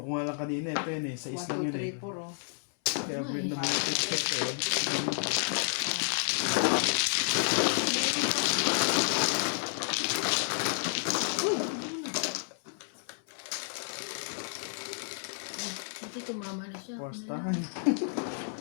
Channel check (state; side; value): silent; right; 57 dB below the other